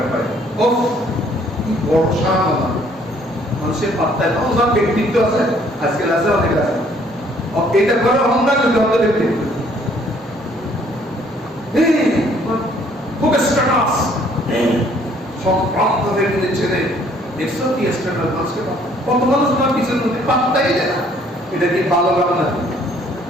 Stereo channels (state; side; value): normal; both; correlation 0.62